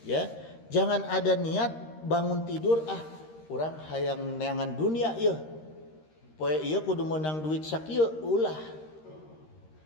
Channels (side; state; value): right; late; 13 ms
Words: ya. Jangan ada niat bangun tidur urang hayang neangan dunia ieu. Poe ieu kudu menang duit sakieu ulah.